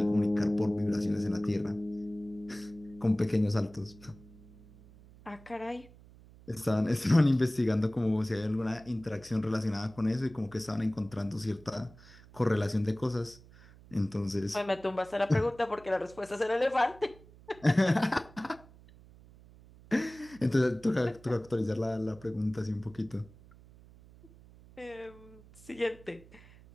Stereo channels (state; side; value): noise; right; hum, 22 dB below the sound